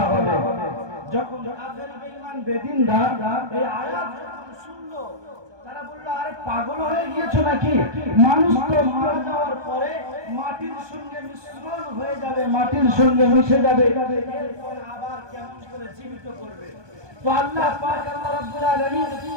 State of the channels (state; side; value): late; left; 1.2 ms